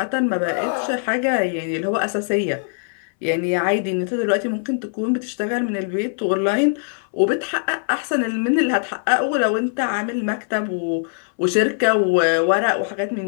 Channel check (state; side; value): silent; right; 65 dB below the other